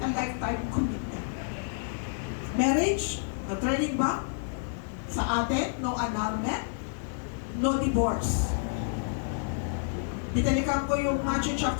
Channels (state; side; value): silent; right; digital silence